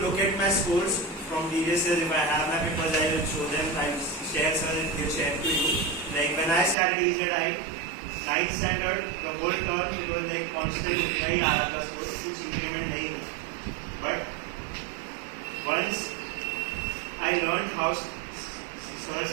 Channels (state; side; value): drops out; left; at 6.8 s